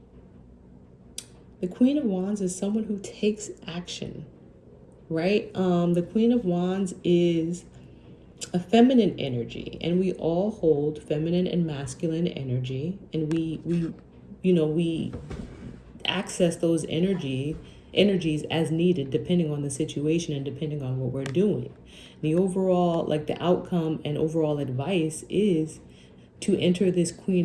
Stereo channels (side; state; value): both; identical; correlation 1.00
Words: The Queen of Wands is someone who takes action, right? The Queen of Wands is a feminine energy, and we all hold feminine and masculine energy, and we access those energies as needed, depending on the situation and depending on what we're doing. The overall, the outcome and overall advice is to enter this